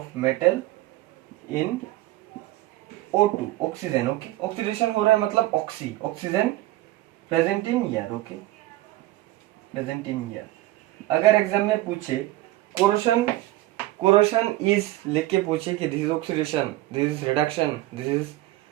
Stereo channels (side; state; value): left; quieter; 16.8 dB